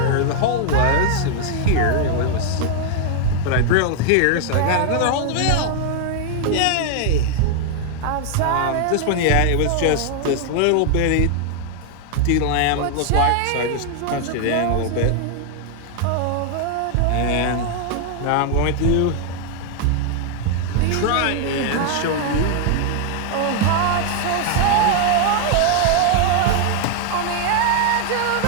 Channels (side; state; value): both; different; correlation 0.00